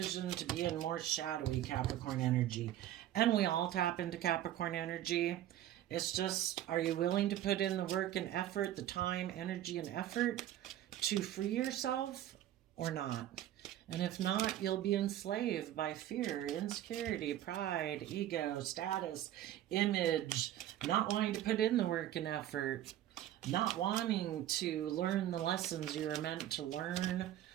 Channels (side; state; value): left; quieter; 12.6 dB